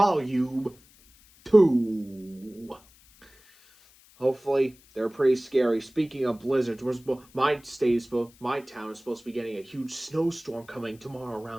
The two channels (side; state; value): left; noise; hiss, 27 dB below the sound